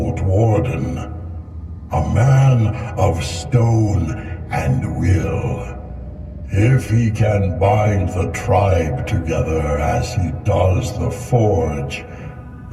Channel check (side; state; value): both; identical; correlation 1.00